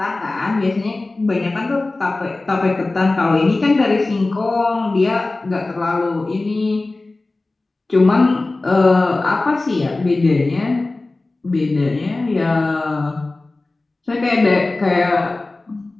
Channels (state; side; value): quieter; right; 3.2 dB